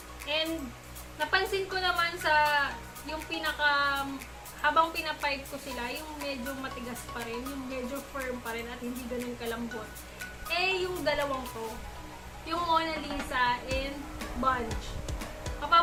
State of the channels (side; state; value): both; identical; correlation 1.00